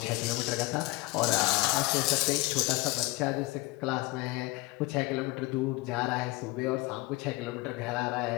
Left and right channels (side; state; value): right; quieter; 21.6 dB